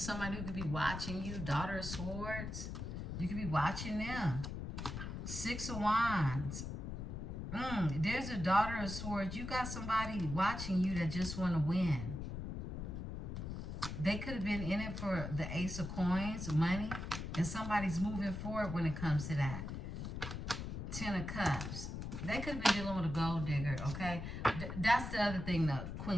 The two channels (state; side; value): noise; left; rumble, 6 dB below the sound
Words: somebody who could be watching you. Daughter of Swords. You could be watching them. Six of Wands. There's a Daughter of Swords. You got somebody watching you that just want to win. They could have been in it for the Ace of Coins, money. And somebody's moving forward when it comes to that. Ten of Cups. They could have been dealing with a gold digger, okay? That's the other thing the